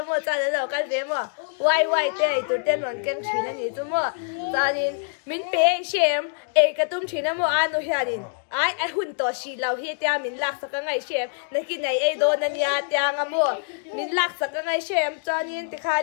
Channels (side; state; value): right; silent; digital silence